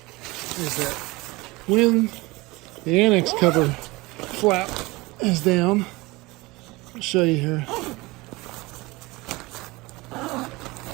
is that when the annex cover flap is down, I'll show you here.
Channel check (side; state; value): left; quieter; 22.7 dB